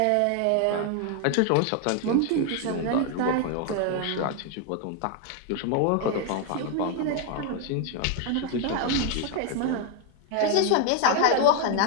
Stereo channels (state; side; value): different; both; correlation 0.00